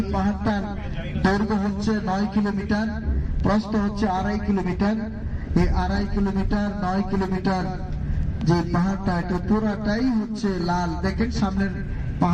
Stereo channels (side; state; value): both; identical; correlation 1.00